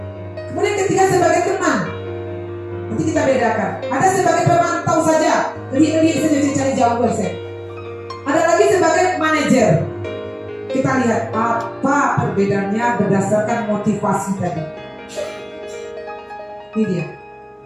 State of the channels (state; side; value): identical; both; correlation 1.00